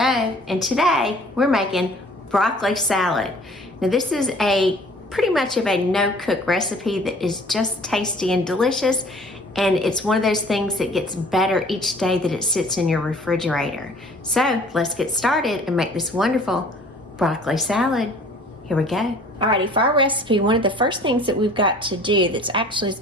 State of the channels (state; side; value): normal; both; correlation 0.51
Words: and today we're making broccoli salad. Now this is a pretty much of a no-cook recipe that is just tasty and delicious, and it's one of those things that gets better each day that it sits in your refrigerator. So let's get started and make this wonderful broccoli salad. Here we go. Alrighty, for our recipe, one of the first things that we've got to do that's actually is